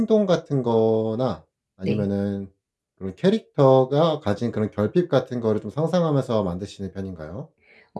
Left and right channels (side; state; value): both; identical; correlation 1.00